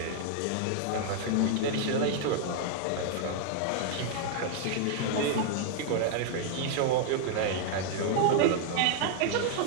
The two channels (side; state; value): both; different; correlation 0.00